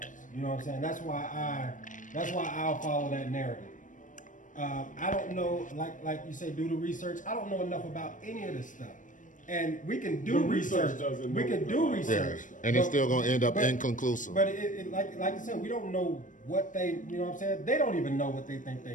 You know what I'm saying? That's why I'll follow that narrative. I don't know, like you say, do the research. I don't know enough about any of this stuff, and we can do The research research. doesn't We know can do about research, Yeah, and it's but- still gonna end up but- inconclusive. But like you said, we don't know what they. You know what I'm saying? They don't even know what they think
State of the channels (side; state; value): right; late; 0.37 ms